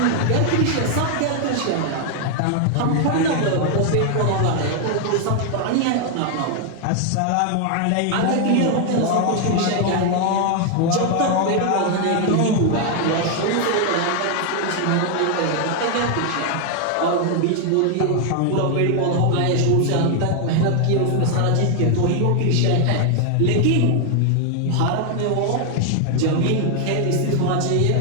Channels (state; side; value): different; both; correlation 0.00